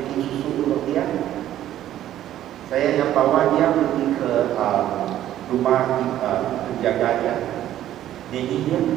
susu untuk dia, saya yang bawa dia pergi ke rumah penjaga dia. Dia.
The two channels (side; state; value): left; quieter; 12.4 dB